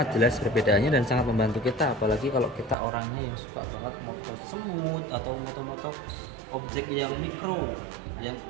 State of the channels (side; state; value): left; drops out; at 2.8 s